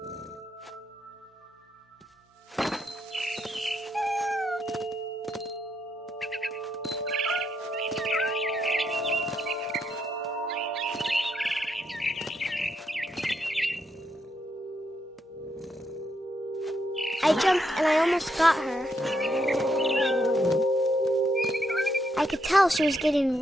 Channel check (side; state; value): both; normal; correlation 0.78